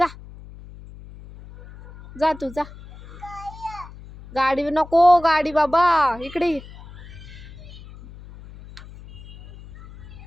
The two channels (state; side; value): noise; left; hum, 18 dB below the sound